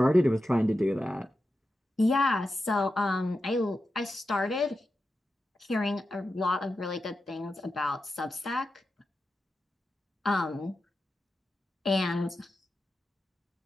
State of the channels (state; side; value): normal; both; correlation 0.90